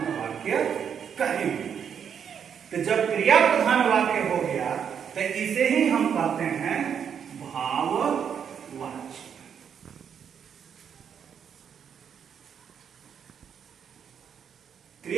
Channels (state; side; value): quieter; left; 7.8 dB